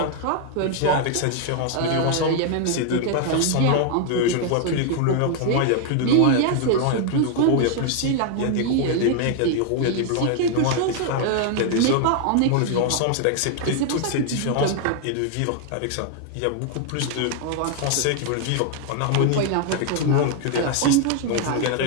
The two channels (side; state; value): both; different; correlation 0.00